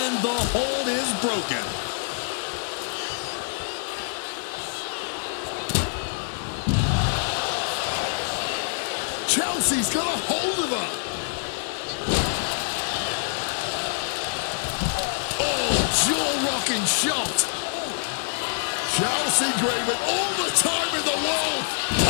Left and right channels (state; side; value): silent; right; digital silence